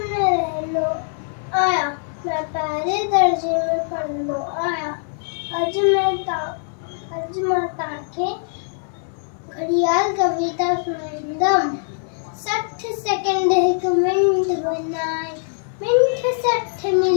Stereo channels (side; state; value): right; silent; digital silence